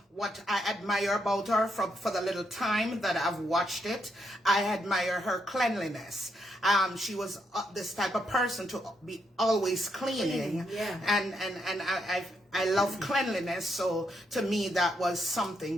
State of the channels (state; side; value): normal; both; correlation 0.78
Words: what I admire about her for the little time that I've watched it. I admire her cleanliness. She was this type of person to be always cleaning. Yeah. And I love cleanliness. So to me, that was